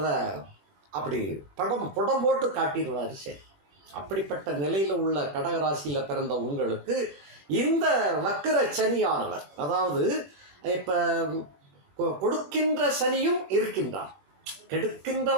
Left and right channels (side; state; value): left; late; 21 ms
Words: அப்படி புடம் போட்டு காட்டிடுவார். சரி, அப்படிப்பட்ட நிலையில் உள்ள கடகராசியில் பிறந்த உங்களுக்கு இந்த வக்கர சனியானவர், அதாவது இப்போ கொடுக்கின்ற சனியும் இருக்கின்றார்,